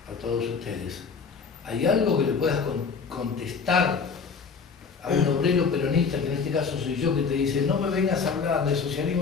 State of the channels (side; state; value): right; quieter; 5.4 dB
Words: a todos ustedes, ¿hay algo que le puedas contestar a un obrero peronista, que en este caso soy yo, que te dice, no me vengas a hablar de socialismo